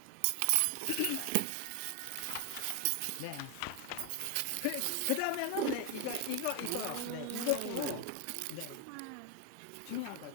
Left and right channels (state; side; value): different; both; correlation 0.01